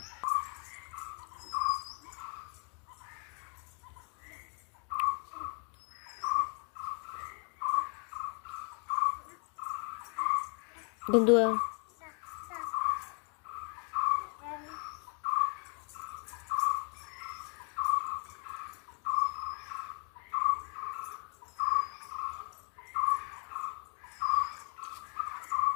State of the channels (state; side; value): quieter; right; 38.1 dB